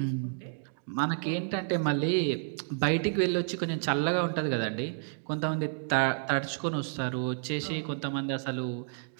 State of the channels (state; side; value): silent; left; digital silence